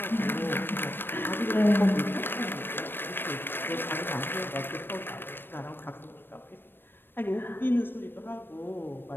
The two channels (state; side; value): late; right; 0.098 ms